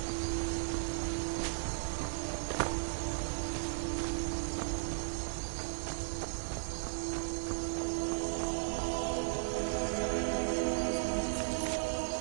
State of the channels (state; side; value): silent; left; digital silence